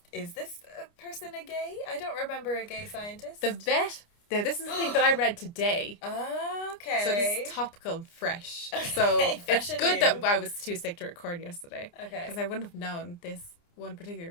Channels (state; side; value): late; right; 29 ms